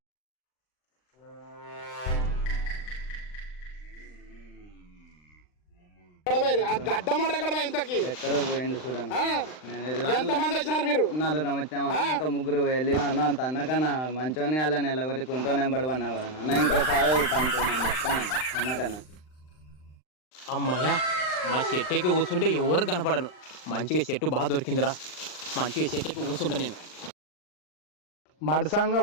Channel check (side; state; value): right; late; 39 ms